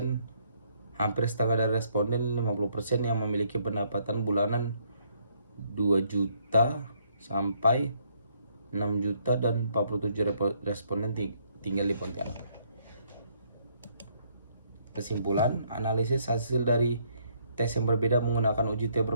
Hampir setengah dari responden 50% yang memiliki pendapatan bulanan 2 juta sampai 6 juta dan 47 responden tinggal di Pontianak. Kesimpulan, analisis hasil dari tes yang berbeda menggunakan uji T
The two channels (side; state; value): both; inverted; correlation -0.69